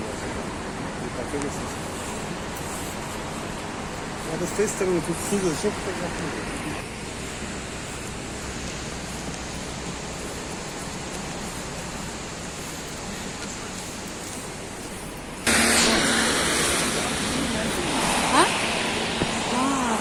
Надо с той стороны тут сюда, что фотографировать.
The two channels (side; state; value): both; identical; correlation 1.00